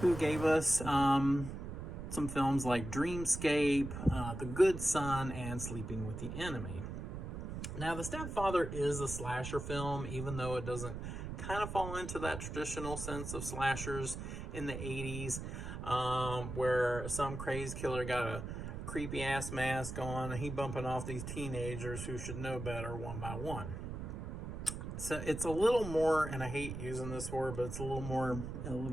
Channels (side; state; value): right; noise; rumble, 7 dB below the sound